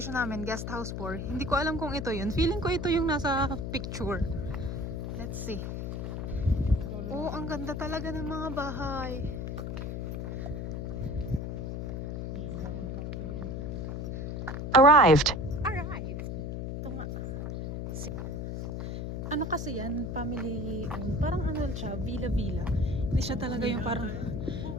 namin, guest house 4. Hindi ko alam kung ito yun. Feeling ko ito yung nasa picture. Let's see. Oh, ang ganda talaga ng mga bahay. Arrived. Arrived. Ito nga. Ano kasi yan? Family owned. Parang siya, villa-villa. Hindi siya talaga yung parang...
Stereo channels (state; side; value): noise; left; hum, 4 dB below the sound